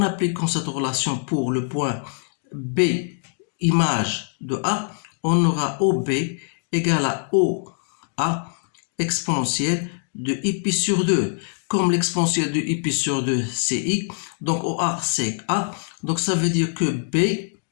appliquant cette relation pour le point B image de A, on aura OB égale à OA exponentielle de I pi sur 2. Comme l'exponentielle de I pi sur 2 c'est I, donc OA c'est A, donc ça veut dire que B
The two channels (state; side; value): silent; right; digital silence